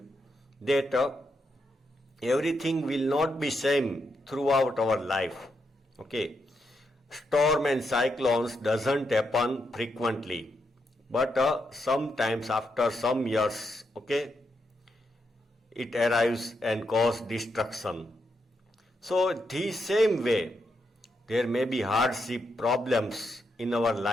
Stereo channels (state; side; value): normal; both; correlation 0.82